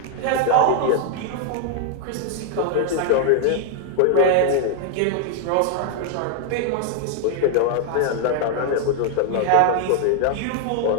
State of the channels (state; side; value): different; both; correlation 0.00